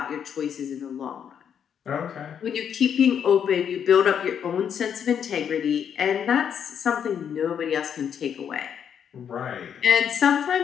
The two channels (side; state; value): right; quieter; 8.2 dB